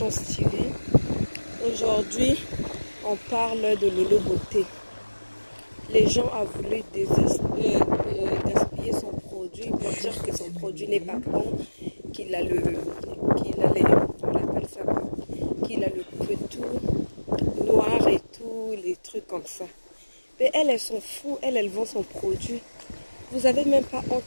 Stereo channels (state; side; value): inverted; both; correlation -1.00